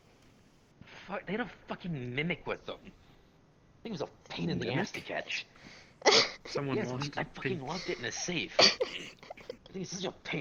Fuck, they had a fucking mimic with them. I think it was a pain in the ass to catch. Someone Yes, lost I their fucking pink. locked it in a safe. I think it's such a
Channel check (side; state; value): both; identical; correlation 1.00